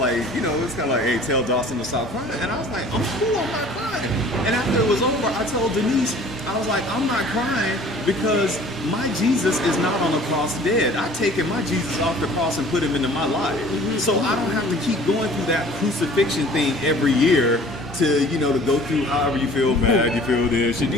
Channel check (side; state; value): right; noise; hum, 20 dB below the sound